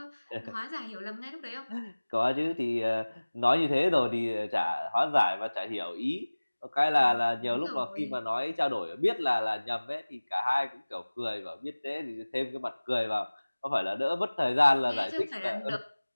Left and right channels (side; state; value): both; inverted; correlation -1.00